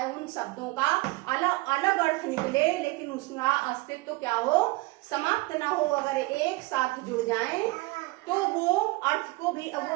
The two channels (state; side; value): quieter; left; 22.6 dB